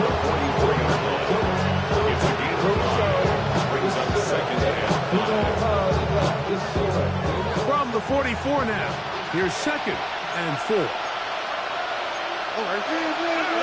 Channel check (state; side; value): identical; both; correlation 1.00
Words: 44-yard line. It's a gain of 5. Brings up second and 5. From the 44 now, here's second and 4.